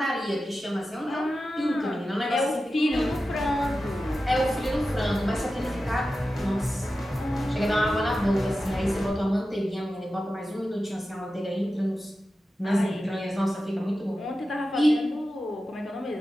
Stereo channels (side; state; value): both; normal; correlation 0.93